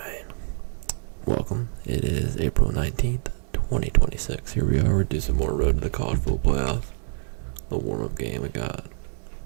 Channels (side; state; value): left; silent; digital silence